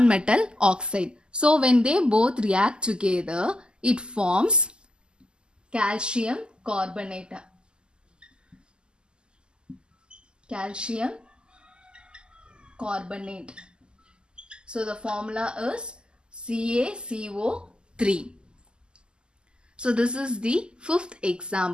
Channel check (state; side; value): late; left; 0.048 ms